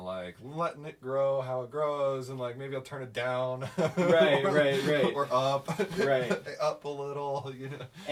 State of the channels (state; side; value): identical; both; correlation 1.00